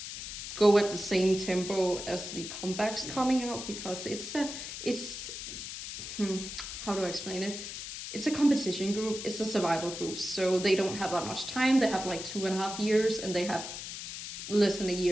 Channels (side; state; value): left; noise; hiss, 8 dB below the sound